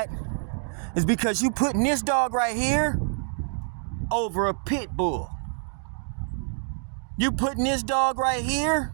is because you putting this dog right here over a pit bull. You putting this dog right here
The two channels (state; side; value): silent; left; 60 dB below the other